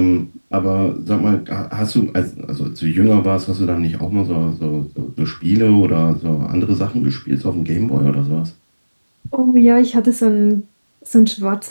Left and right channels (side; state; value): both; inverted; correlation -1.00